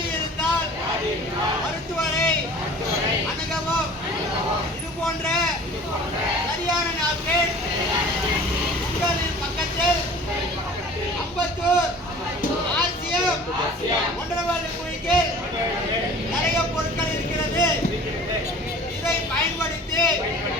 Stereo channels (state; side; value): normal; both; correlation 0.44